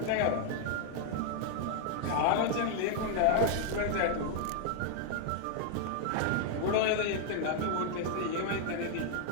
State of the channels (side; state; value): both; different; correlation 0.00